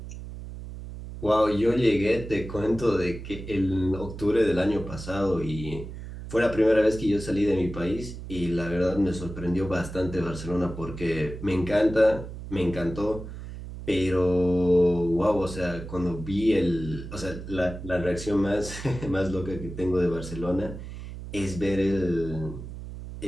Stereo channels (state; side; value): noise; right; hum, 10 dB below the sound